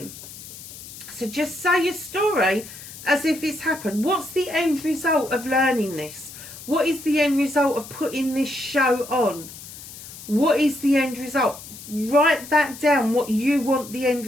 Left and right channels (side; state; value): left; noise; hiss, 15 dB below the sound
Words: So just say your story as if it's happened. What's the end result of learning this? What is the end result of putting this show on? What is the end result? Write that down, what you want the end